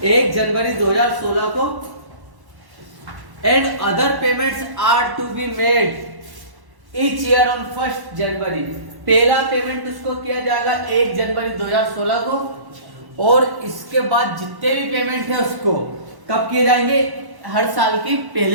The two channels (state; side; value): late; left; 1.1 ms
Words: 1 जनवरी 2016 को। And other payments are to be made each year on 1 January. पहला पेमेंट उसको किया जाएगा 1 जनवरी 2016 को, और इसके बाद जितने भी पेमेंट है उसको कब किए जाएंगे? हर साल की